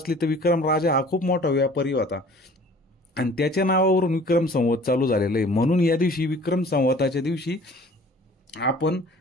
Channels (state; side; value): normal; both; correlation 0.49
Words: तर विक्रम राजा हा खूप मोठा व्यापारी होता आणि त्याच्या नावावरून विक्रम संवत चालू झालेलं आहे. म्हणून या दिवशी विक्रम संवताच्या दिवशी आपण